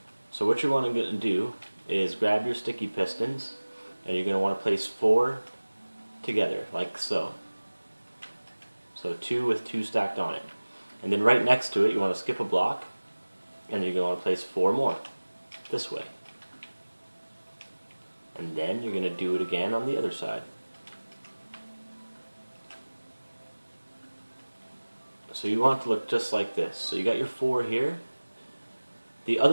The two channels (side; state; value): both; inverted; correlation -1.00